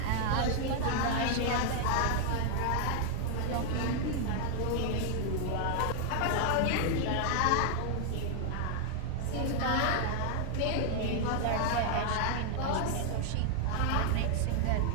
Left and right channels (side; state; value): both; different; correlation 0.00